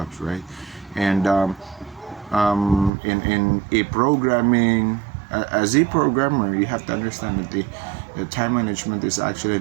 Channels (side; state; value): left; drops out; at 2.9 s